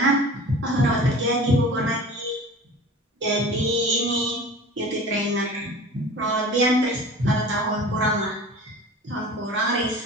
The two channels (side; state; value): both; normal; correlation 0.39